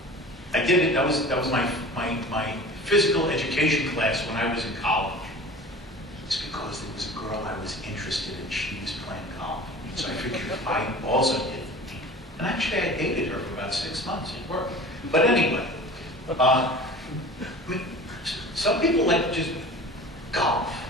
I did it. That was my physical education class when I was in college. It's because there was a girl I was interested in. She was playing golf. So I figured I also did. And actually I dated her for about 6 months. It worked. But anyway, I mean, some people like to just golf.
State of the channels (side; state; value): both; normal; correlation 0.39